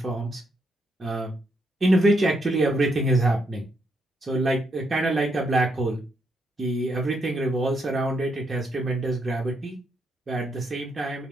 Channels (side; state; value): both; normal; correlation 0.78